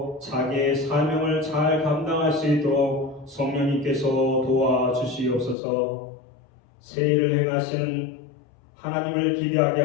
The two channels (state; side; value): drops out; right; at 5.6 s